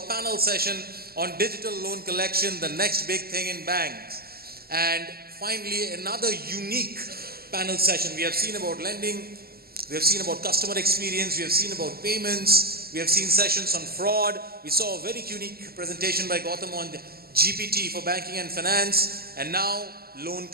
panel session on digital loan collection, the next big thing in banks. And finally, another unique panel session. We have seen about lending, we have seen about customer experience, we have seen about payments, we have seen sessions on fraud. We saw a very unique presentation by Gautam on GPT for banking and finance, and now loan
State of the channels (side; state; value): left; late; 0.45 ms